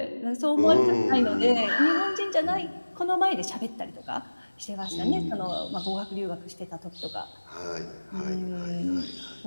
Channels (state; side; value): inverted; both; correlation -1.00